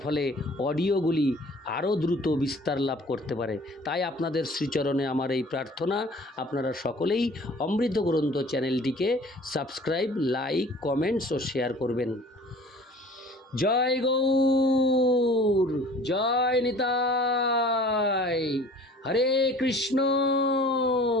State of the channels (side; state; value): both; normal; correlation 0.48